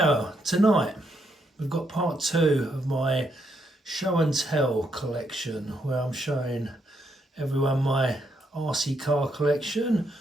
tonight, we've got part 2 of my show and tell collection, where I'm showing everyone my RC car collection.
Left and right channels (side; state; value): both; normal; correlation 0.77